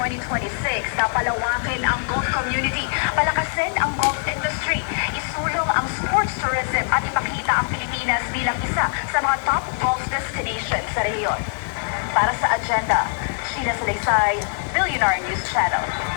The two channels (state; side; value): silent; right; 64 dB below the other